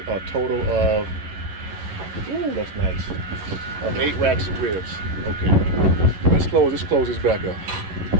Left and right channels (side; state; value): left; late; 11 ms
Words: a total of, ooh, that's nice, of 8 racks of ribs. Okay, let's close this back up.